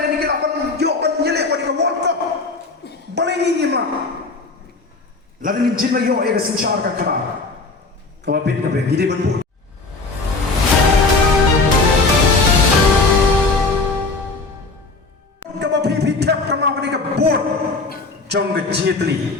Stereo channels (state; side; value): quieter; right; 3.7 dB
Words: dan kilapan yoban nyelek pada World Cup. Paling ingin lah. Lada ni jin lah yo ega sensyar kakara. Kemudian kibarin gede bentuk. Kemudian pitak kena pada kebun, jong kecitli,